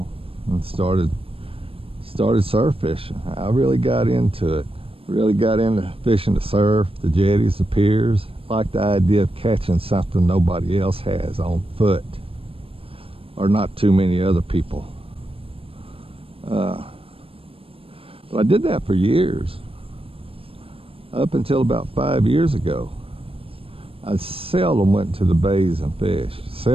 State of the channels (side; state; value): left; late; 0.27 ms